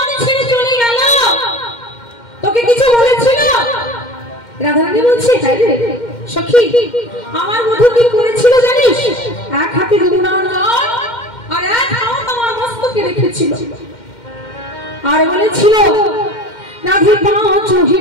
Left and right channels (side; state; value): right; late; 2.1 ms